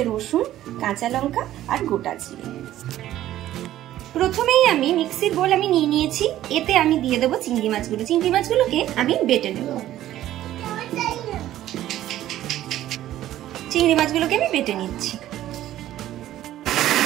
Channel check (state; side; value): quieter; left; 13.4 dB